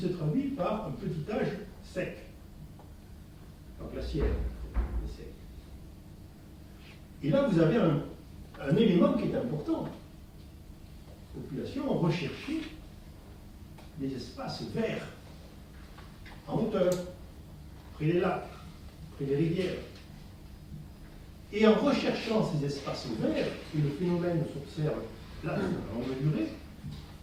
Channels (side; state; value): both; identical; correlation 1.00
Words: traduit par un petit âge sec, pas glaciaire, mais sec. Et là, vous avez un élément qui est important. Les populations ont recherché des espaces verts, en hauteur, près des lacs, près des rivières. Et en recherchant ces espaces verts, et le phénomène s'observe là, à longue durée,